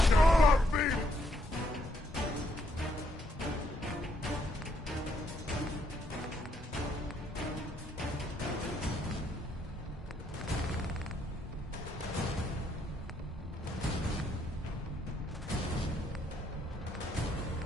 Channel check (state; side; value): normal; both; correlation 0.73